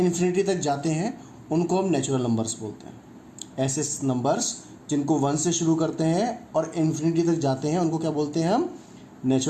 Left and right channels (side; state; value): both; identical; correlation 1.00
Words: तक जाते हैं उनको हम नेचुरल नंबर्स बोलते हैं। ऐसे नंबर्स जिनको 1 से शुरू करते हैं और इन्फिनिटी तक जाते हैं उनको क्या बोलते हैं? हम